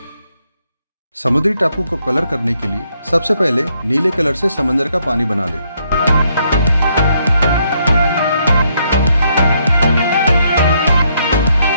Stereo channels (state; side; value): inverted; both; correlation -0.74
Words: समुद्री टापू को कलर करने के लिए सबसे पहले नीले कलर से समंदर का पानी बना लें।